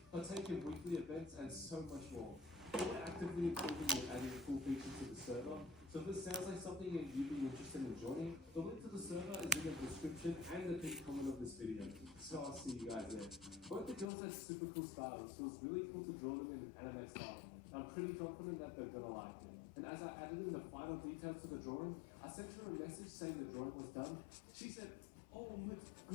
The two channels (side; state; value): right; drops out; at 14.1 s